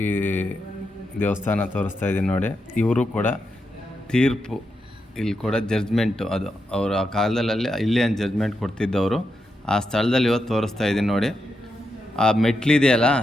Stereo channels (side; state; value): both; normal; correlation 0.85